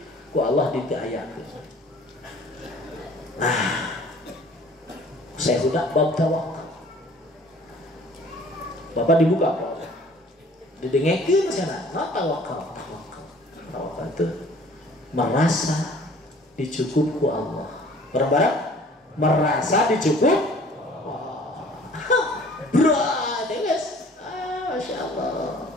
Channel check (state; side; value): normal; both; correlation 0.51